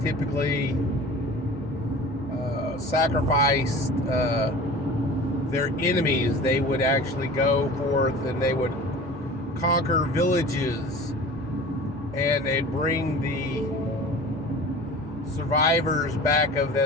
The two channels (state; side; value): normal; both; correlation 0.39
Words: typically sacrificed their enemies. They would actually go forth and they would conquer villages, and they'd bring the survivors back of